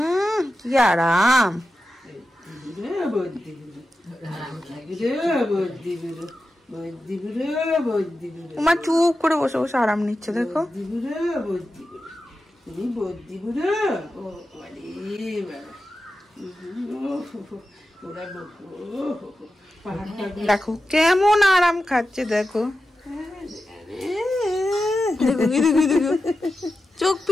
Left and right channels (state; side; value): normal; both; correlation 0.92